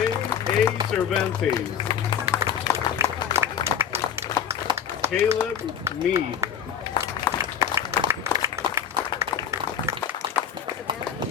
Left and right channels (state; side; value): quieter; right; 8.4 dB